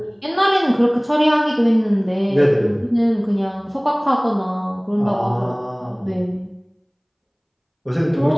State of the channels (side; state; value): both; identical; correlation 1.00